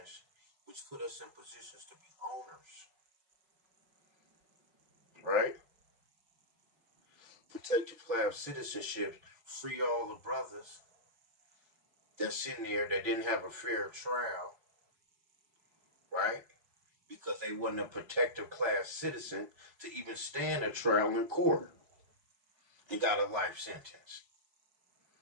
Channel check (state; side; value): late; left; 5.8 ms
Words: which put us in positions to be owners, right? Protected class citizenship, free all the brothers that's in there that didn't have a fair trial, right? Because they wasn't a protective class citizen to even stand a trial in court and got a life sentence.